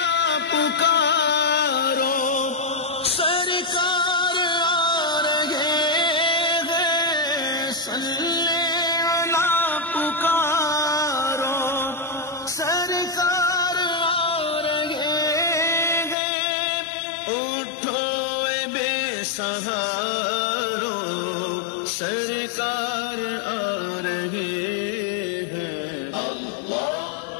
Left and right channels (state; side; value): drops out; right; at 16.2 s